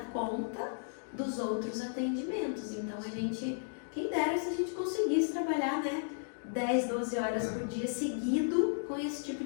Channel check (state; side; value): silent; right; digital silence